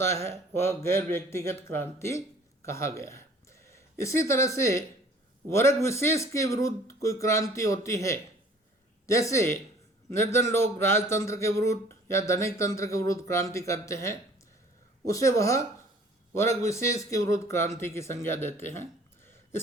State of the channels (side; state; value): both; normal; correlation 0.53